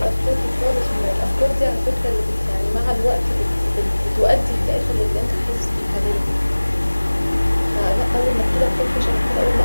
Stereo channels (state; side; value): inverted; both; correlation -1.00